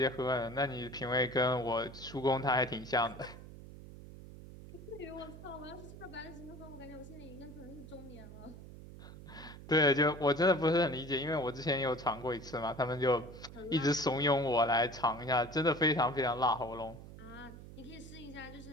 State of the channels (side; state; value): right; noise; hum, 15 dB below the sound